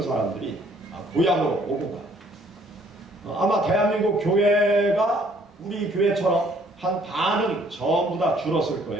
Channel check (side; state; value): both; normal; correlation 0.62